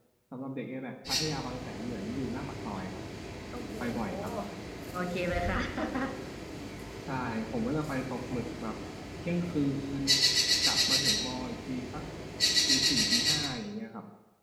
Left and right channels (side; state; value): both; identical; correlation 1.00